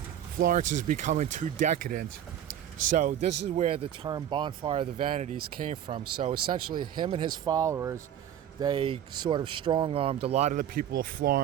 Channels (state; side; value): quieter; left; 10.3 dB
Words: is becoming too decadent. So this is where the term Bonfire of the Vanities came from. So essentially him and his followers, they sort of strong-armed a lot of the people of